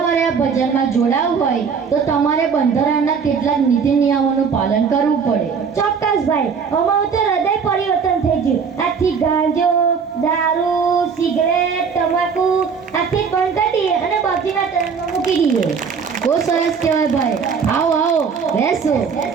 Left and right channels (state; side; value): quieter; left; 6.0 dB